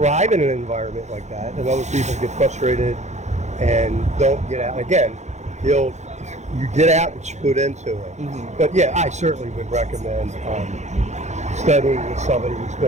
in an environment like that, and other people get frustrated and don't get out. Again, you get out what you put into it. But yeah, I certainly would recommend studying with somebody who's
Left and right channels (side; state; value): left; late; 0.33 ms